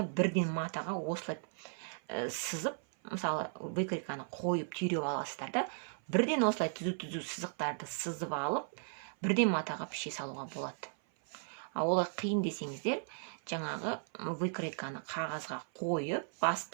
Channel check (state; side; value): silent; left; 54 dB below the other